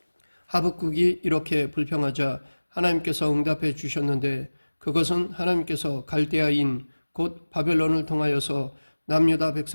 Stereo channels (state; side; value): inverted; both; correlation -1.00